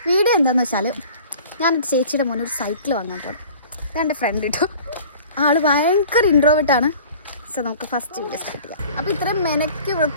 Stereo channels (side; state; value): both; inverted; correlation -0.45